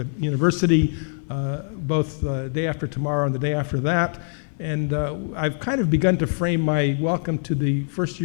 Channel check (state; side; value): silent; right; 63 dB below the other